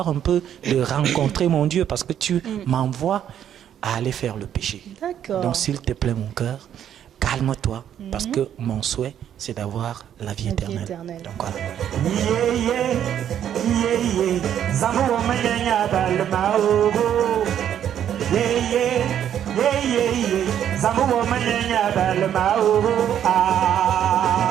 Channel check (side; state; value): left; quieter; 9.9 dB